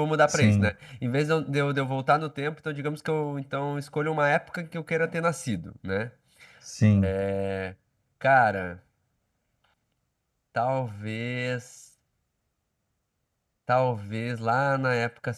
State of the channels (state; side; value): identical; both; correlation 1.00